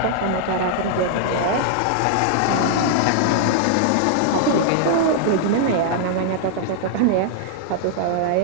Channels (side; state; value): both; different; correlation -0.01